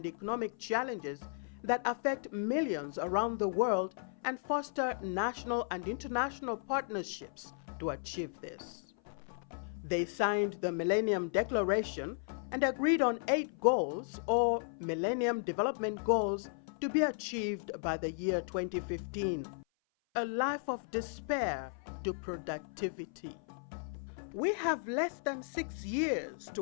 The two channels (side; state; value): right; silent; 54 dB below the other